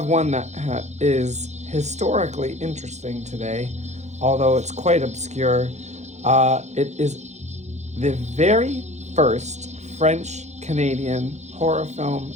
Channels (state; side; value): late; left; 0.33 ms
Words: one that is historically interesting today, although it's quite obscure. It is the very first French Canadian horror film